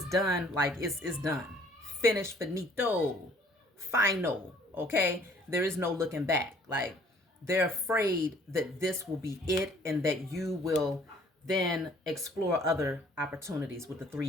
done, like it's done. Finished, finito, final. Okay? There is no looking back. Like, they're afraid that this will be it and that you will then explore other opportunities with the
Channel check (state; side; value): normal; both; correlation 0.58